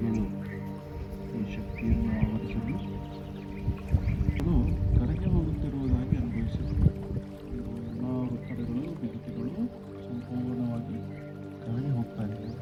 ಈ ಶಕ್ತಿಯನ್ನು ಆವರಿಸಲು ಅದು ಕರಗಿ ಹೋಗುತ್ತಿರುವುದಾಗಿ ಅನುಭವಿಸುತ್ತದೆ. ಎಲ್ಲ ಒತ್ತಡಗಳು, ಬಿಗಿತಗಳು ಸಂಪೂರ್ಣವಾಗಿ ಕರಗಿ ಹೋಗ್ತಾ ಇದೆ.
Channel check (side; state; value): both; identical; correlation 1.00